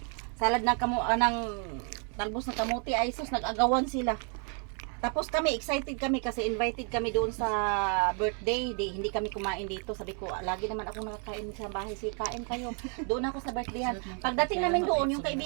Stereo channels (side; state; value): left; quieter; 39.9 dB